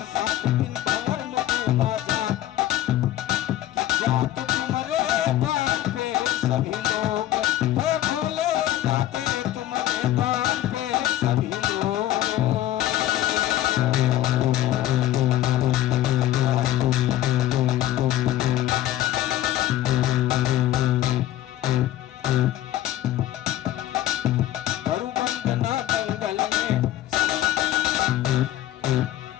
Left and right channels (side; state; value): right; quieter; 13.4 dB